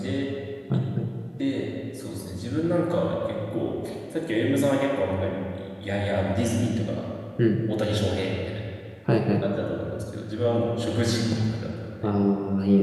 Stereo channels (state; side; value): identical; both; correlation 1.00